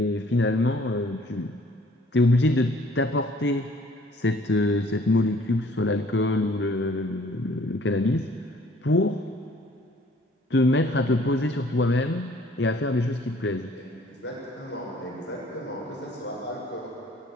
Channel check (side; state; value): both; normal; correlation 0.57